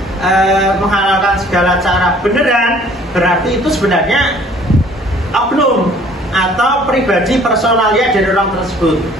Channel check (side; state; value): both; normal; correlation 0.55